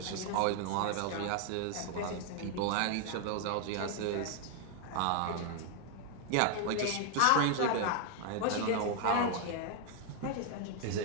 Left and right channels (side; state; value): both; different; correlation 0.00